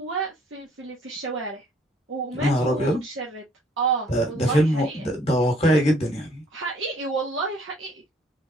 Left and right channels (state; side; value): normal; both; correlation 0.60